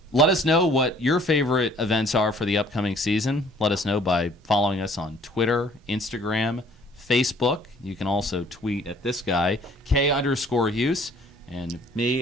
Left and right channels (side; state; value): both; normal; correlation 0.57